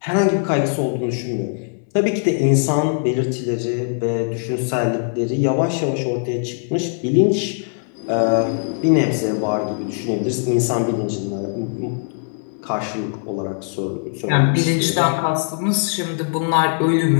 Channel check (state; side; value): silent; right; 65 dB below the other